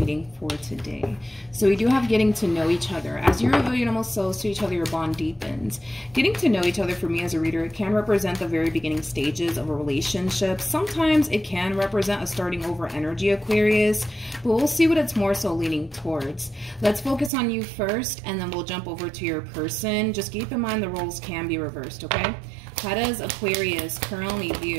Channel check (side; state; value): left; drops out; at 17.3 s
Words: for today. So we do have getting to know each other. As you reveal your innermost souls to each other, your bond deepens. Getting to know each other for me as a reader, it can represent the very beginning stages of a relationship. Sometimes it can represent a starting over energy, Aquarius, but we'll see what it's more so leaning towards. Let's focus on you first, and then we'll jump over to your person. Just keep in mind the roles can be reversed, okay? How does Aquarius currently